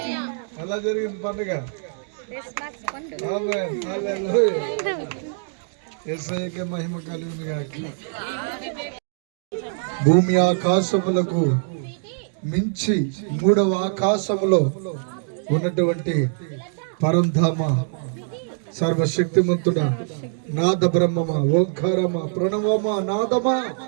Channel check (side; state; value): left; silent; digital silence